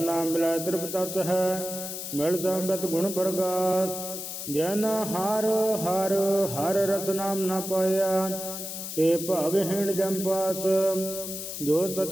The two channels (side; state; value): left; noise; hiss, 7 dB below the sound